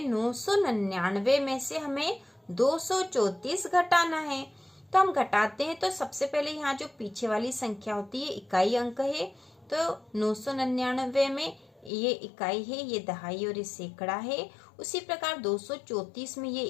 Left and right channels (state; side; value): drops out; right; at 11.9 s